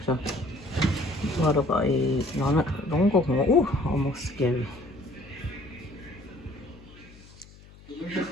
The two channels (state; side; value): noise; left; hum, 22 dB below the sound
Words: sao bò đâu gọi nó đúng có ngủ almost scary